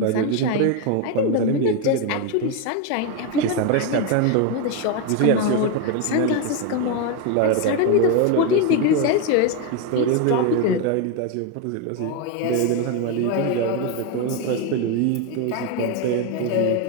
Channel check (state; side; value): different; both; correlation 0.02